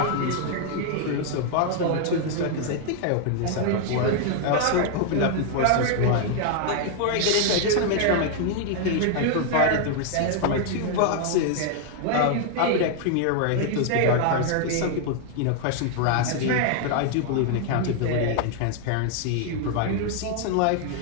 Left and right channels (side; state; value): both; different; correlation 0.00